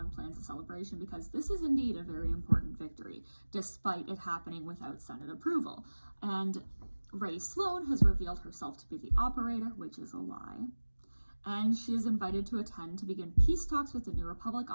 plans a celebration because this is indeed a very important victory, despite it happening without Senate approval. And Rey Sloane has revealed herself to be the operator, which is a lie. And she is invited to attend to begin peace talks with the New Republic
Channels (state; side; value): inverted; both; correlation -1.00